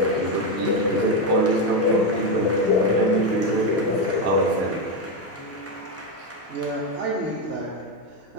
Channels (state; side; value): normal; both; correlation 0.09